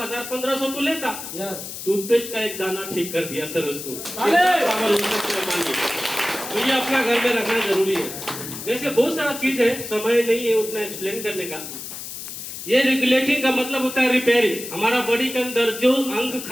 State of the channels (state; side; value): noise; left; hiss, 9 dB below the sound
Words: तो लेता। टूथपेस्ट का एक दाना ठीक कर दिया सर उसको। तो ये अपना घर में रखना जरूरी है। वैसे बहुत सारा चीज है, समय नहीं है उतना एक्सप्लेन करने का। ये रेगुलेटिंग का मतलब होता है रिपेयरिंग। हमारा बॉडी के अंदर जो अंग